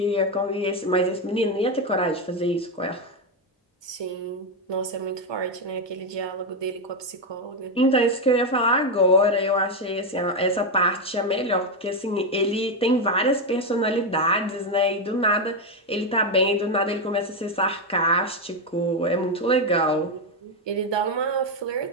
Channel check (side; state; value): both; normal; correlation 0.06